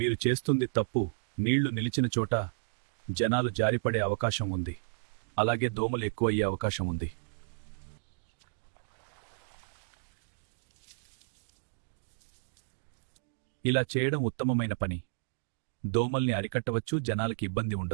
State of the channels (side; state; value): left; silent; digital silence